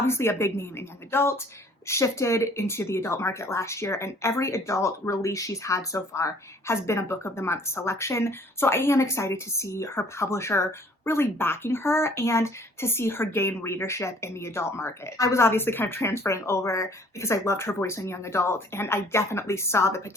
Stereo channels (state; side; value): normal; both; correlation 0.56